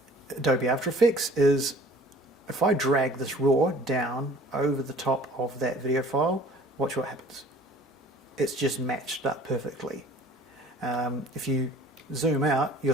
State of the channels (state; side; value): normal; both; correlation 0.50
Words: Adobe After Effects is if I drag this raw down over the top of that video file, watch what happens. It's just matched up perfectly. If you zoom out, you'll